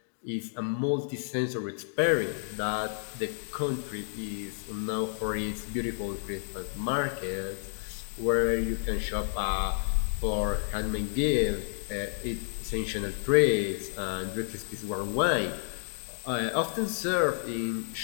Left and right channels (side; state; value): right; silent; digital silence